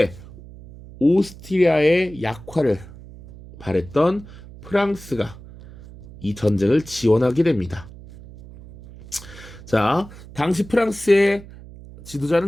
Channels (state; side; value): noise; right; hum, 18 dB below the sound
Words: 오스트리아의 약화를 바랬던 프랑스가 이 전쟁을 지원하게 됩니다. 자, 당시 프랑스의